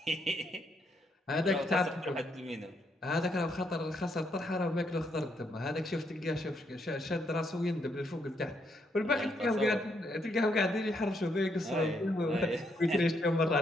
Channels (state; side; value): normal; both; correlation 0.75